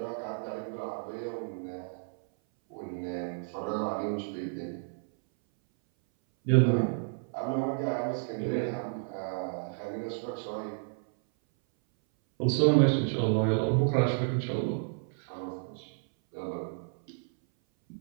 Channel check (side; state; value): left; silent; 57 dB below the other